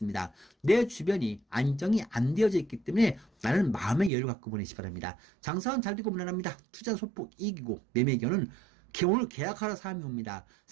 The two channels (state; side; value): drops out; left; at 4.1 s